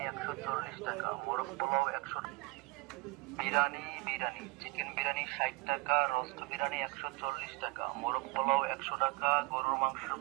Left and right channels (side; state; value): left; quieter; 24.7 dB